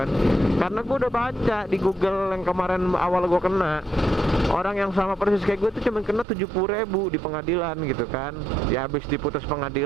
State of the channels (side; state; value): left; drops out; at 6.2 s